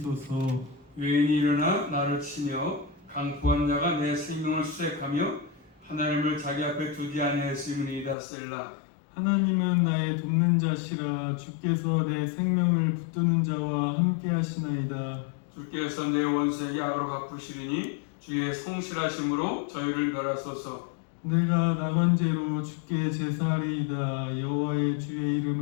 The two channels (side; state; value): right; drops out; at 8.2 s